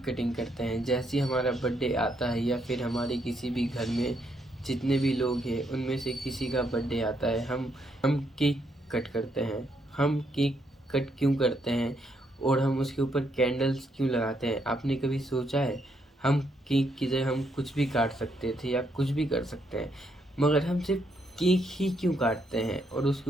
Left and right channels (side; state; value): both; normal; correlation 0.75